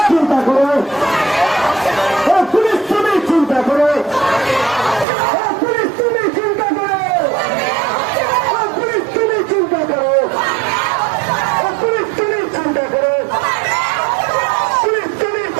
চিন্তা করো, পুলিশ তুমি চিন্তা করো, পুলিশ তুমি চিন্তা করো, পুলিশ তুমি চিন্তা করো, পুলিশ তুমি চিন্তা করো, পুলিশ তুমি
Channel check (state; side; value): drops out; left; at 5.1 s